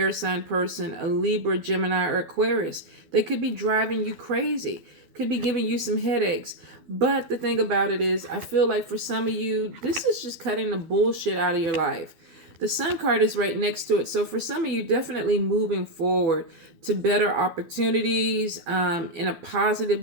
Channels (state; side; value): late; left; 12 ms